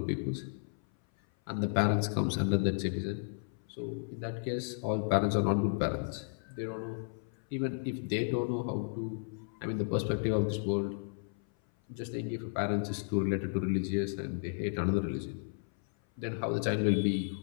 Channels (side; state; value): right; silent; 55 dB below the other